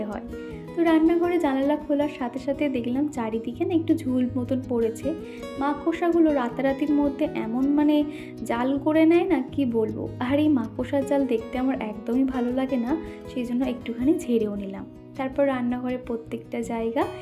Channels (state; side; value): identical; both; correlation 1.00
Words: হয়। তো রান্নাঘরে জানালা খোলার সাথে সাথে দেখলাম চারিদিকে না একটু ঝুল মতন পড়েছে। মাকড়সাগুলো রাতারাতির মধ্যে এমন জাল করে নেয় না, কি বলবো। আর এই মাকড়সার জাল দেখতে আমার একদমই ভালো লাগে না, সেই জন্য একটুখানি ঝেড়েও নিলাম। তারপর রান্নাঘরে প্রত্যেকটা জায়গা